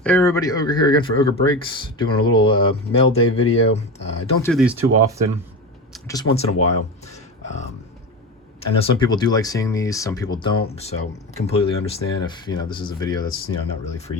Hey everybody, Ogre here again for Ogre Breaks, doing a little mail day video. I don't do these too often, just once in a while. Um, I know some people do like seeing these, some people don't, so completely understand if, this is a video that's, not really for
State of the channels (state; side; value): normal; both; correlation 0.24